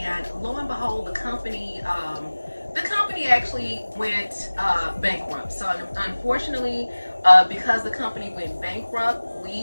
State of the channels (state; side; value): inverted; both; correlation -1.00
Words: lo and behold, the company the company actually went bankrupt. So unfortunately, because the company went bankrupt,